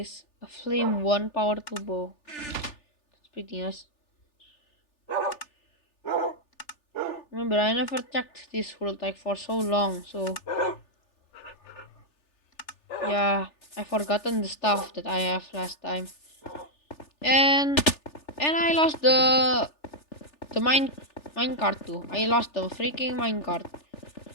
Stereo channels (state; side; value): late; right; 3.4 ms